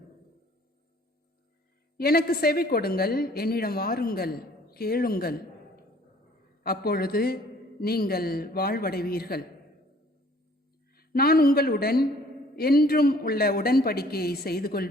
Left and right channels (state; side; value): normal; both; correlation 0.56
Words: எனக்கு செவி கொடுங்கள், என்னிடம் வாருங்கள், கேளுங்கள். அப்பொழுது நீங்கள் வாழ்வடைவீர்கள். நான் உங்களுடன் என்றும் உள்ள உடன்படிக்கையை செய்து